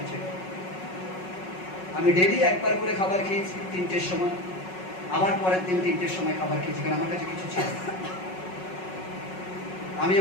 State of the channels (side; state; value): right; late; 5.4 ms